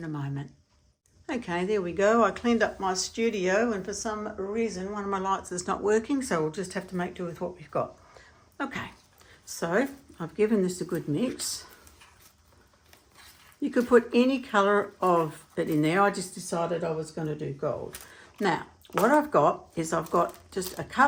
a moment. Okay, there we go. I cleaned up my studio, and for some reason one of my lights is not working, so we'll just have to make do with what we've got. Okay, so I've given this a good mix. You could put any colour of it in there. I just decided I was going to do gold. Now, what I've got is I've got just a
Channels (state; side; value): identical; both; correlation 1.00